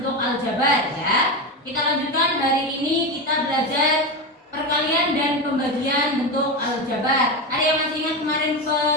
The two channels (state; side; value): normal; both; correlation 0.17